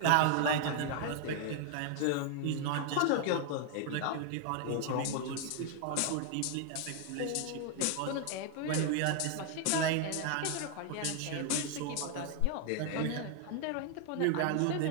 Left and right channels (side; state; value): both; different; correlation 0.00